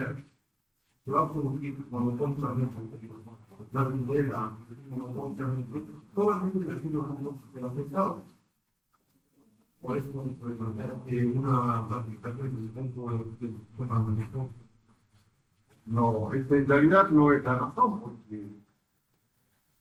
se va a producir monopolios la vivienda, solamente el de los estados. Por eso vamos a plantear una planificación dentro del sistema de gestión. No, en realidad no es la razón, porque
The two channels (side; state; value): both; identical; correlation 1.00